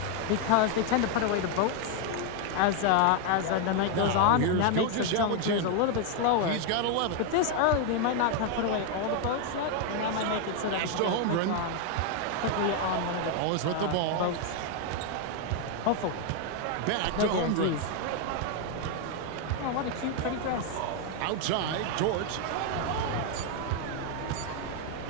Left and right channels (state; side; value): different; both; correlation 0.01